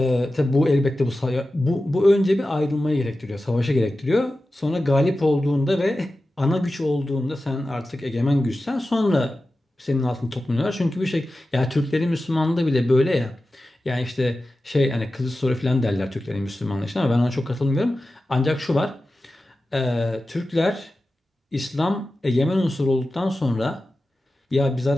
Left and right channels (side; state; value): both; normal; correlation 0.94